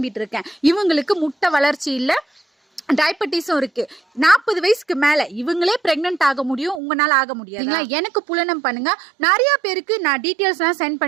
இருக்கேன். இவங்களுக்கு முட்டை வளர்ச்சி இல்ல, டயபெட்டிஸும் இருக்கு. 40 வயசுக்கு மேல இவங்களே பிரெக்னன்ட் ஆக முடியும், உங்களால ஆக முடியாது. எனக்கு புலனம் பண்ணுங்க. நிறைய பேருக்கு நான் டீட்டெயில்ஸ் எல்லாம் சென்ட்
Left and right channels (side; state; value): left; drops out; at 6.8 s